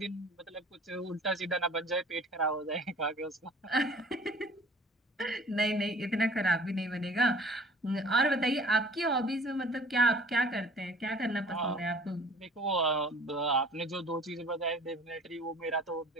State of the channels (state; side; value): normal; both; correlation 0.49